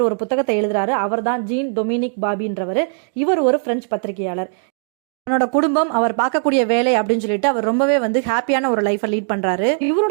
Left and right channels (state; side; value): silent; left; digital silence